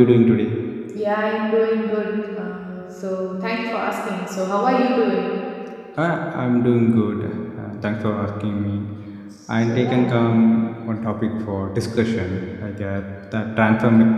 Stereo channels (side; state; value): both; identical; correlation 1.00